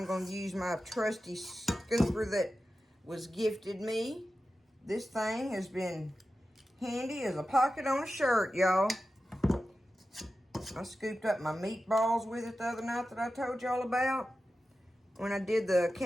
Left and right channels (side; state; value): both; normal; correlation 0.93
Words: going to use my trusty scooper that was gifted me. This thing has been handy as a pocket on a shirt, y'all. I scooped up my meatballs with it the other night that I told y'all about. When I did the